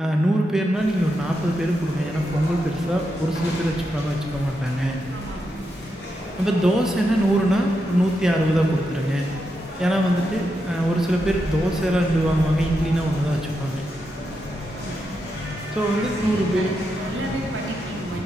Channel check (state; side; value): normal; both; correlation 0.85